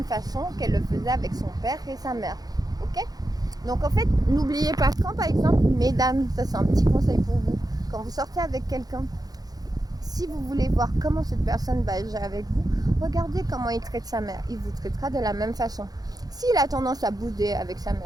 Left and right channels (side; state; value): left; late; 0.19 ms